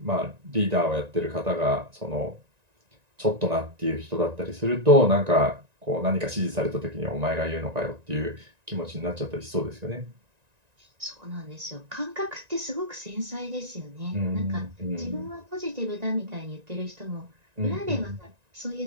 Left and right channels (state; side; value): late; left; 1.9 ms